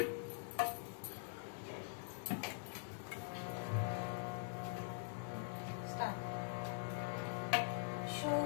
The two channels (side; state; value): right; silent; digital silence